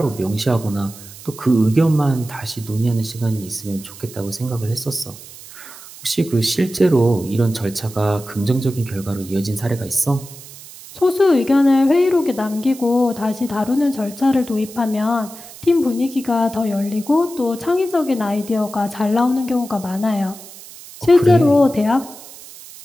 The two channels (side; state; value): right; noise; hiss, 17 dB below the sound